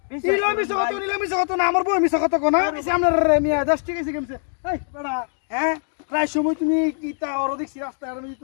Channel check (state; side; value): silent; right; digital silence